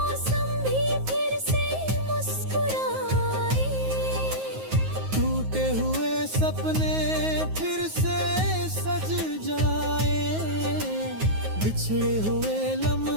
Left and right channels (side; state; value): left; late; 9.4 ms